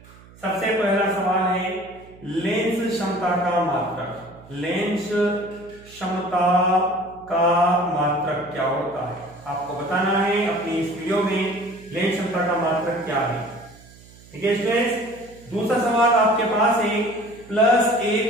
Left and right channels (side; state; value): right; noise; hum, 23 dB below the sound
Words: सबसे पहला सवाल है लेंस क्षमता का मात्रक। लेंस क्षमता का मात्रक क्या होता है आपको बताना है अपनी इस वीडियो में। लेंस क्षमता का मात्रक क्या है। ठीक है स्टूडेंट्स, दूसरा सवाल आपके पास है प्लस